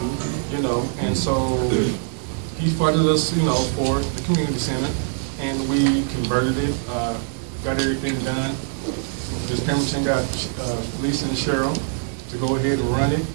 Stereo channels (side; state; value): left; silent; digital silence